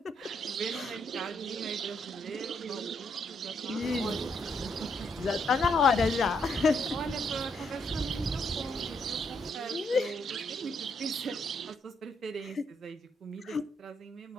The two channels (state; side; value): normal; both; correlation 0.75